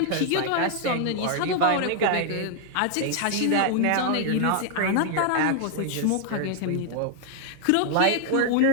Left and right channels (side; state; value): both; different; correlation 0.00